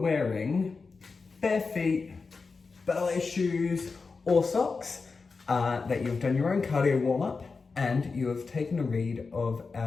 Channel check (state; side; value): quieter; right; 4.5 dB